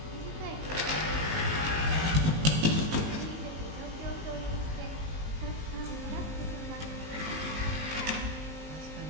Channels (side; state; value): left; late; 19 ms